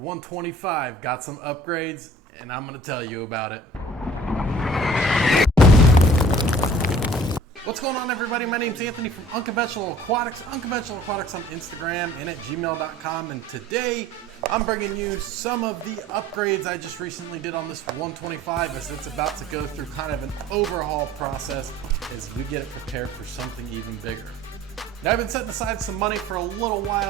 got some upgrades, and I'm gonna tell you about it. What's going on, everybody? My name's Anthony from Unconventional Aquatics. Unconventional Aquatics on Instagram and at gmail.com. And today I'm bringing you some of the upgrades I just recently did on this 125 as it's about to go through kind of an overhaul process as we get it prepared for something even bigger. Now, I've been setting aside some money for a little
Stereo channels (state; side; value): normal; both; correlation 0.50